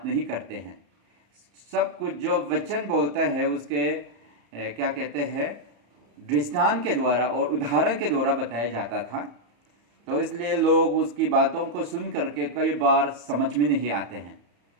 नहीं करते हैं। सब कुछ जो वचन बोलता है उसके क्या कहते हैं, दृष्टांत के द्वारा और उदाहरण के द्वारा बताया जाता था। तो इसलिए लोग उसकी बातों को सुन करके कई बार समझ में नहीं आते हैं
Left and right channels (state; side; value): late; left; 34 ms